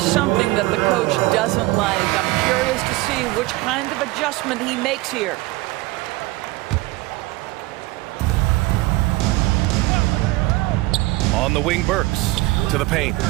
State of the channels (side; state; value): left; quieter; 20.5 dB